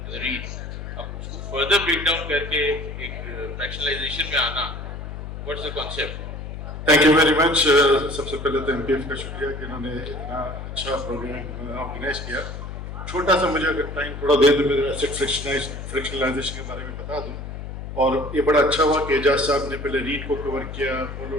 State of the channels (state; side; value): noise; left; hum, 8 dB below the sound